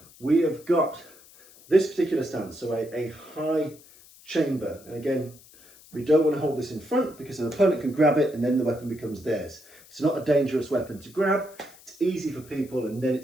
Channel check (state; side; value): noise; left; hiss, 24 dB below the sound